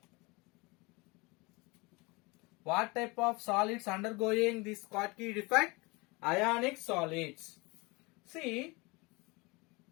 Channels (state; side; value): quieter; right; 25.9 dB